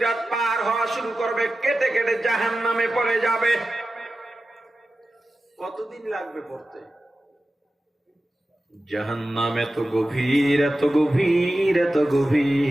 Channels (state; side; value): normal; both; correlation 0.94